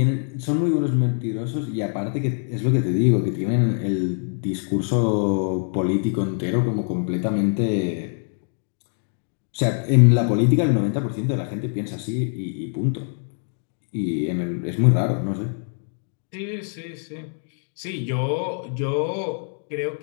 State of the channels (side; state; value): right; silent; 60 dB below the other